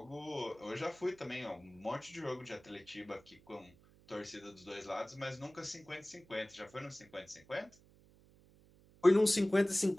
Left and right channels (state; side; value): noise; right; hum, 26 dB below the sound